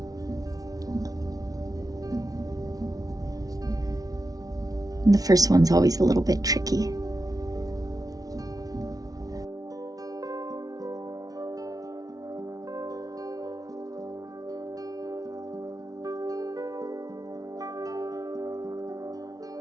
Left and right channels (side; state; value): left; late; 0.18 ms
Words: And the first one's always a little bit tricky.